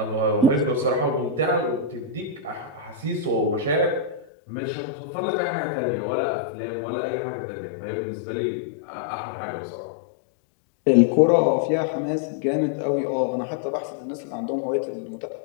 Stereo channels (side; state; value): right; drops out; at 4.2 s